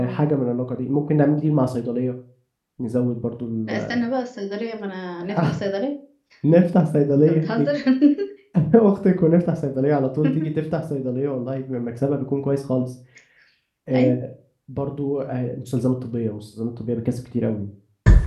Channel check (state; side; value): identical; both; correlation 1.00